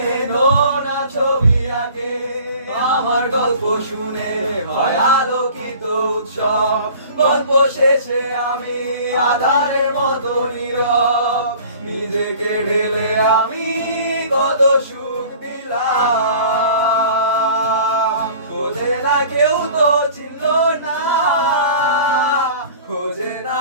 নোনা ছবি আঁকে, আমার গল্প শুনে হয় আলোকিত উৎসব, গল্প শেষে আমি আধারের মতো নীরব, নিজেকে ঢেলে আমি কত সুখ দিলাম। খোঁজে না কেউ তো চিনলো না, খোঁজে না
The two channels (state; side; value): inverted; both; correlation -0.45